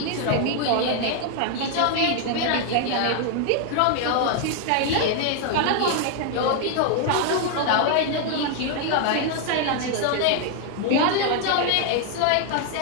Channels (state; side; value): different; both; correlation 0.00